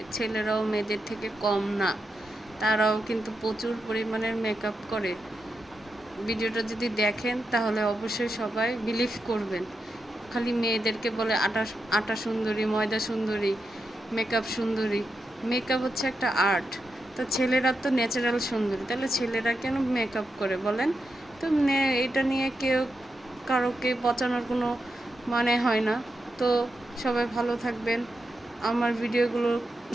ছেলেরাও মেয়েদের থেকে কম না, তারাও কিন্তু প্রচুর পরিমাণের মেকআপ করে। ভিডিওটা যদি দেখেন তাহলে অবশ্যই সবাই বিলিভ করবেন। খালি মেয়েদেরকে বলে আটা আটা সুন্দরী, ময়দা সুন্দরী, মেকআপ সুন্দরী। মেকআপ হচ্ছে একটা আর্ট। তো ছেলেরা তো ন্যাচারাল সুন্দরী, তাহলে ছেলেরা কেন মেকআপ করে বলেন? তো এটা নিয়ে কারোকে পচানোর কোনো মানে হয় না। তো সবাই ভালো থাকবেন, আমার ভিডিওগুলো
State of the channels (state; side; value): normal; both; correlation 0.86